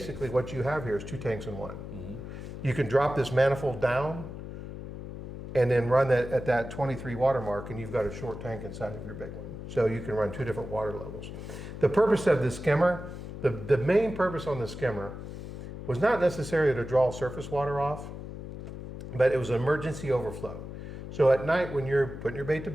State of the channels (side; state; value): left; noise; hum, 10 dB below the sound